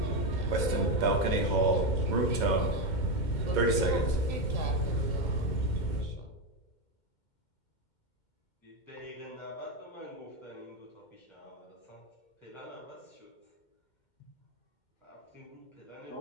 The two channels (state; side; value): late; right; 2.1 ms